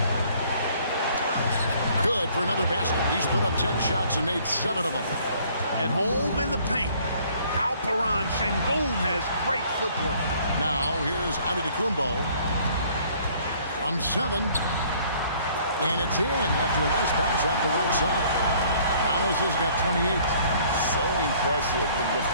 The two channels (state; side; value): inverted; both; correlation -0.58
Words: Good for another basket. He's put up 10 shots and made 7 of them. At home in the paint, Alperen Şengün has great footwork. Now here's Antetokounmpo from 7. And it's in after a nice bounce off the right side. Giannis has got 28. So impressive. The